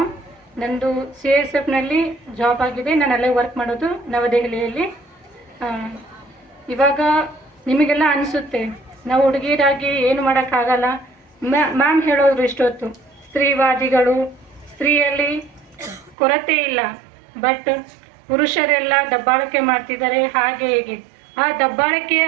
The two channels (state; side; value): drops out; left; at 16.2 s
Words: ನಂದು CISFನಲ್ಲಿ ಜಾಬ್ ಆಗಿದೆ, ನಾನು ಅಲ್ಲೇ ವರ್ಕ್ ಮಾಡೋದು ನವದೆಹಲಿಯಲ್ಲಿ. ಇವಾಗ ನಿಮಗೆಲ್ಲ ಅನಿಸುತ್ತೆ ನಾವು ಹುಡುಗಿಯರಾಗಿ ಏನು ಮಾಡೋಕ್ಕಾಗಲ್ಲ. ಮ್ಯಾಮ್ ಹೇಳೋರು ಇಷ್ಟೊತ್ತು ಸ್ತ್ರೀವಾದಿಗಳು, ಸ್ತ್ರೀಯಲ್ಲಿ ಕೊರತೆ ಇಲ್ಲ, ಬಟ್ ಪುರುಷರೆಲ್ಲ ದಬ್ಬಾಳಿಕೆ ಮಾಡ್ತಿದ್ದಾರೆ ಹಾಗೆ ಹೀಗೆ. ಆ ದಬ್ಬಾಳಿಕೆ